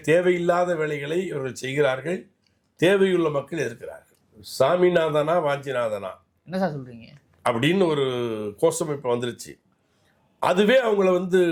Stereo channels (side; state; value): both; identical; correlation 1.00